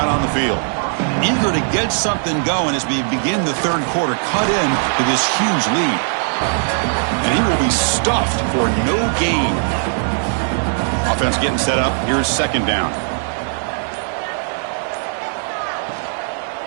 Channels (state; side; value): silent; left; 64 dB below the other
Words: on the field. Eager to get something going as we begin the third quarter. Cut in to this huge lead. And he will be stuffed for no gain. Offense getting set up. Here's second down.